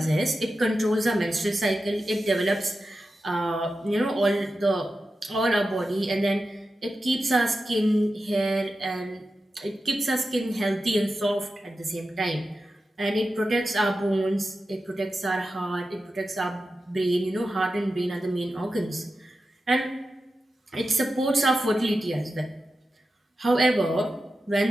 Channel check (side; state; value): both; normal; correlation 0.91